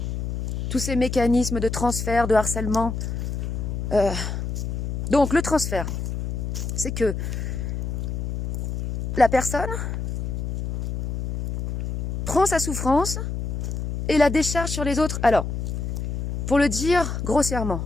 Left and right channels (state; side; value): noise; left; hum, 3 dB below the sound